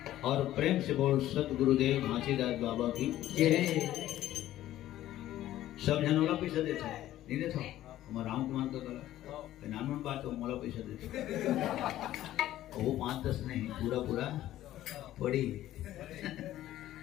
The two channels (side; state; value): right; quieter; 13.7 dB